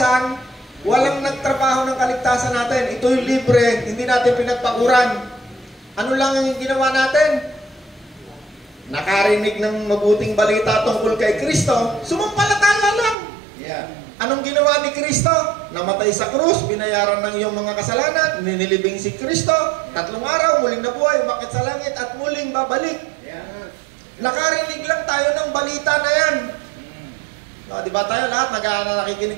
walang nagtrabaho ng kaligtasan natin. Ito'y libre, hindi natin pinagpaguran. Ano lang yung ginawa natin? nakarinig ng mabuting balita tungkol kay Kristo, sumampalataya lang. Yeah. Anong ginawa ni Kristo? Namatay sa krus, binayaran ng iyong mga kasalanan, ninilibing si Kristo, 3 araw, muling nabuhay, umakyat sa langit, at muling babalik. Yeah. Nakarinig lang tayo ng balita na yan. No, di ba tayo lahat, nakikinig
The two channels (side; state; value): left; drops out; at 13.2 s